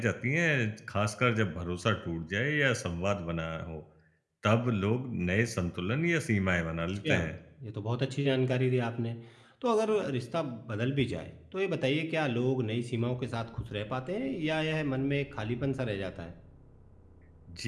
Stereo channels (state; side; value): identical; both; correlation 1.00